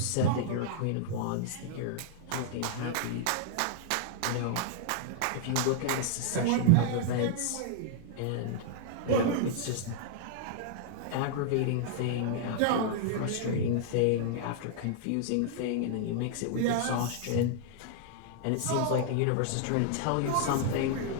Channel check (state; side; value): different; both; correlation -0.01